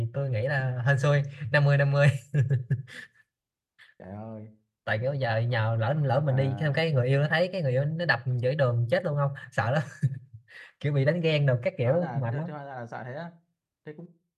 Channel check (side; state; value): both; identical; correlation 1.00